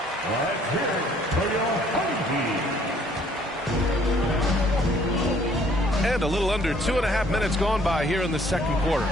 And a little under 2.5 minutes gone by here in the second quarter.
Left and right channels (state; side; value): normal; both; correlation 0.61